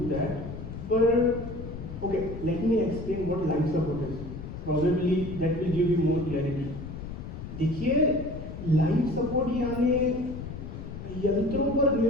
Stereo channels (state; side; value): noise; left; rumble, 9 dB below the sound